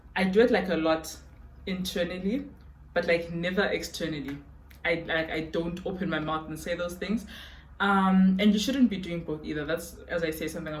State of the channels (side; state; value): both; identical; correlation 1.00